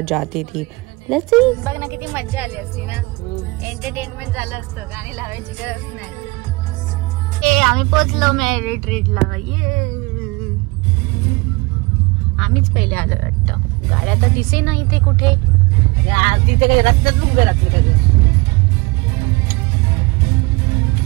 जाती थी। Let's see. बघ ना किती मज्जा आली असती ना, एंटरटेनमेंट झालं असतं, गाणी लावायची गरज नाही। आम्ही पोहोचलो मेरिट ट्रीटला। ये आम्हीच पहिले आलो वाटतं, गाड्या तर दिसे ना इथे कुठे। तिथे रस्त्यात उभे राहते सगळे।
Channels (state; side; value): quieter; left; 25.2 dB